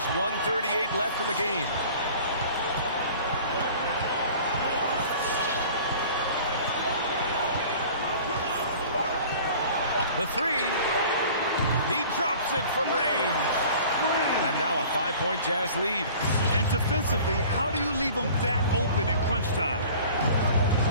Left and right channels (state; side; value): inverted; both; correlation -0.45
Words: 1:38 left in the game. The 3. He drops it from range. And now a 5-point Jazz lead. And defensively, how do you leave them that open in crunch time?